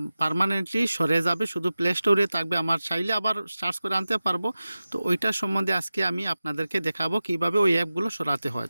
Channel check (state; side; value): inverted; both; correlation -0.95